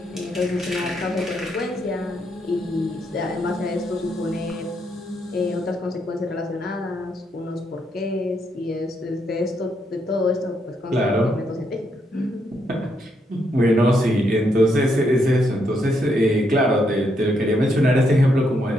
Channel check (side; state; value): both; normal; correlation 0.77